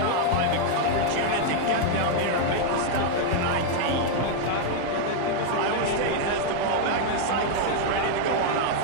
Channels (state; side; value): different; both; correlation 0.00